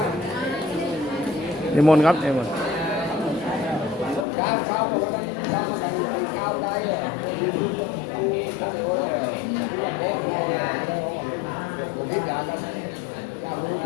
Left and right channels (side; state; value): right; drops out; at 4.2 s